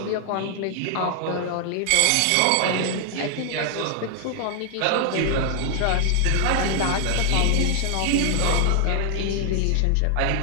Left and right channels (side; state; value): both; different; correlation 0.00